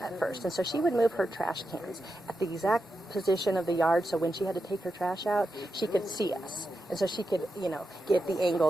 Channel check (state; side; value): normal; both; correlation 0.88